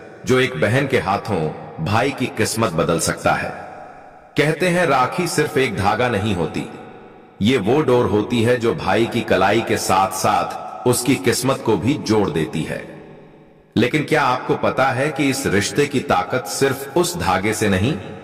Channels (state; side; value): identical; both; correlation 1.00